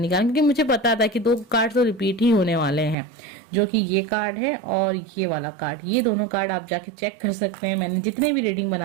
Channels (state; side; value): drops out; left; at 3.0 s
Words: क्योंकि मुझे पता था कि 2 कार्ड तो रिपीट ही होने वाले हैं, जो कि ये कार्ड है और ये वाला कार्ड। ये दोनों कार्ड आप जाके चेक कर सकते हैं। मैंने जितने भी रीडिंग